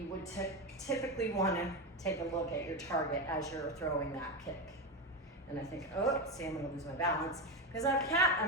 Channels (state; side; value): normal; both; correlation 0.15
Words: would typically want to take a look at your target as you're throwing that kick. And I think, oh, see, I'm going to lose my balance because I have a cat